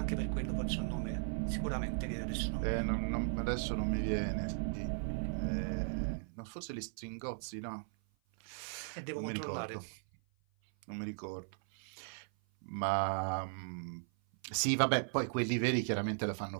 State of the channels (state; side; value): silent; left; 53 dB below the other